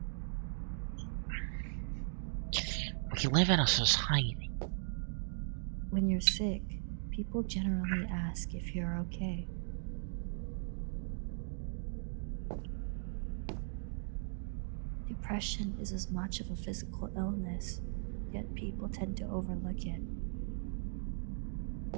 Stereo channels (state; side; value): silent; left; digital silence